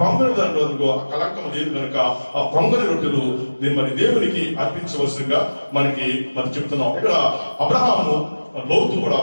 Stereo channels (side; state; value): both; inverted; correlation -1.00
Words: పొంగని దాంట్లో కలంకం లేదు కనుక ఆ పొంగని రొట్టెలు మరి దేవునికి అర్పించవలసిందిగా మనకి చెప్తున్నాం. ఇక్కడ అబ్రహాము లోతు కూడా